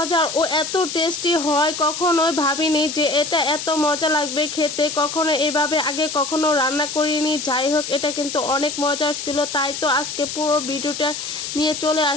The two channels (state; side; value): noise; left; hiss, 6 dB below the sound